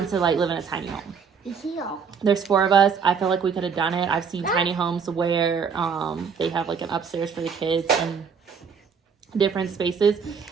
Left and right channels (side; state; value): left; quieter; 6.2 dB